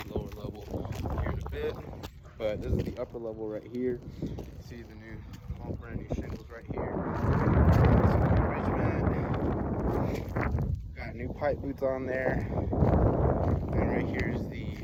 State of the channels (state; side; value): identical; both; correlation 1.00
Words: lower level here in a bit. But this is the upper level right here. See the new, all brand new shingles right here. Got new pipe boots on there. And right here is the